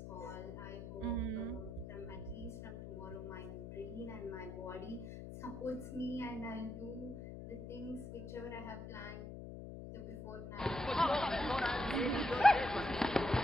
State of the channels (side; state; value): left; noise; hum, 9 dB below the sound